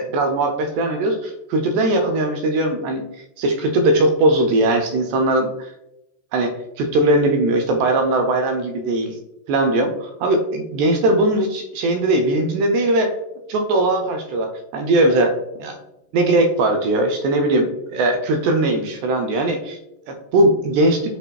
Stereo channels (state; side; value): late; left; 14 ms